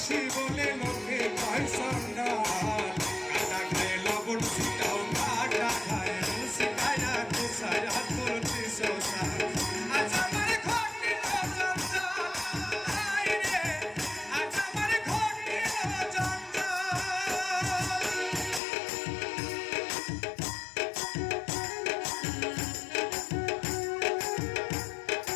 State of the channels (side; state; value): right; drops out; at 18.6 s